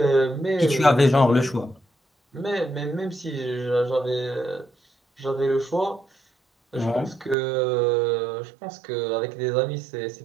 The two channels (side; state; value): left; drops out; at 7.4 s